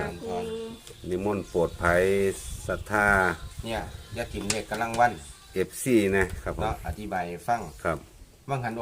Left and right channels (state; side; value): identical; both; correlation 1.00